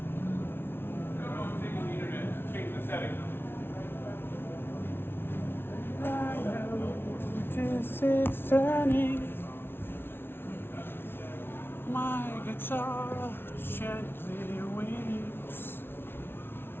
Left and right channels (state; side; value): late; right; 0.11 ms